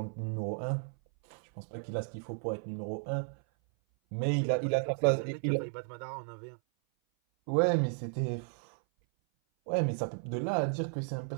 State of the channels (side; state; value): left; silent; 55 dB below the other